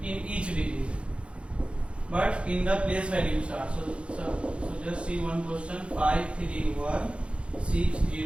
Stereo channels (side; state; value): left; late; 0.059 ms